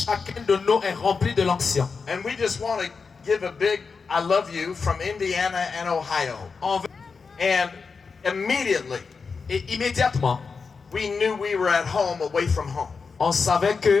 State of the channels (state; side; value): quieter; right; 5.0 dB